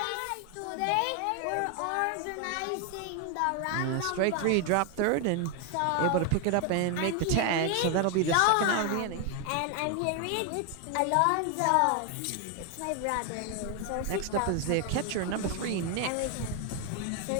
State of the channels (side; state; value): both; different; correlation 0.01